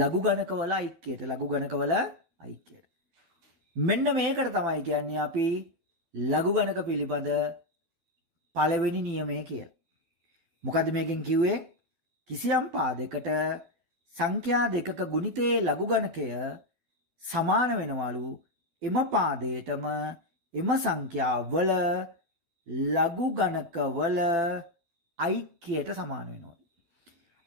ගණකවල ඓක්‍යයට. ලඝු ගණකවල ඓක්‍යයට. මෙන්න මේකට තමයි කියන්නේ අපි ලඝු ගණක පිළිබඳ පළවෙනි නියමය කියලා. මොකද්ද මේකෙන් කිව්වේ? කිසියම් පාදයකට සංඛ්‍යා දෙකක ගුණිතයේ ලඝු ගණකය සමාන වෙනවලු එම පාදයටම එම සංඛ්‍යාවල ලඝු ගණකවල ඓක්‍යයට සමාන වෙනවා.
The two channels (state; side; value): late; left; 12 ms